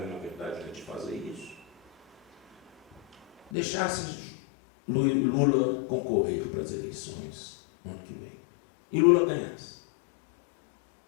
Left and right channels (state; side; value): drops out; right; at 3.5 s